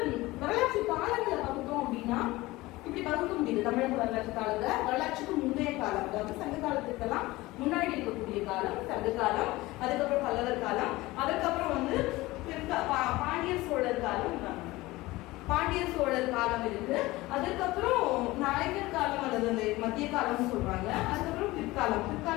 வரலாற்று காலங்களை பகுத்தோம் அப்படின்னா இப்படி பகுக்க முடியுது. தமிழக வரலாற்று காலத்தை வரலாற்றுக்கு முந்தைய காலம், அதாவது சங்க காலத்துக்கெல்லாம் முன்னாடி இருக்கக்கூடிய காலம் சங்க காலம், அதுக்கப்புறம் பல்லவர் காலம், அதுக்கப்புறம் பாண்டியர் சோழர் காலம், பாண்டியர் சோழர் காலம் இருக்கு. அதுக்கப்புறம் நாயக்கர் காலம் அல்லது அந்த மத்திய காலம்னு சொல்றாங்க. அதுக்கப்புறம்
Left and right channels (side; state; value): right; quieter; 19.6 dB